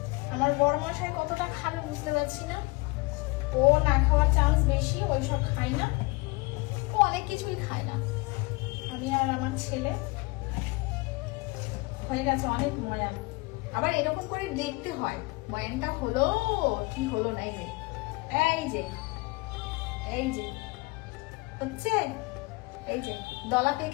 আমার বড় মশাই কতটা খাবে বুঝতে পারছি না। ও না খাওয়ার চান্স বেশি, ওইসব খায় না, ও অনেক কিছুই খায় না। আমি আর আমার ছেলে হয়ে গেছে অনেক মজা। আবার এরকম করে দেখতে হয় বয়ানটা হলো কি হলো না। এই যে এই যে হচ্ছে, এই যে দলা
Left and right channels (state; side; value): quieter; right; 25.1 dB